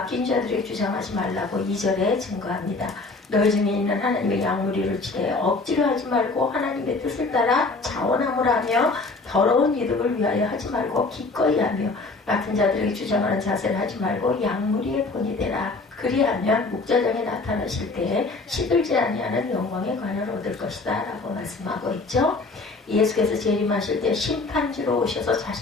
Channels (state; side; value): quieter; right; 3.6 dB